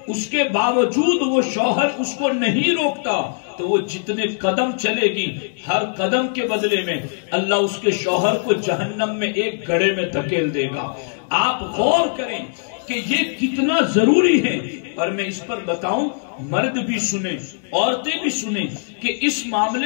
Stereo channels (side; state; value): right; silent; digital silence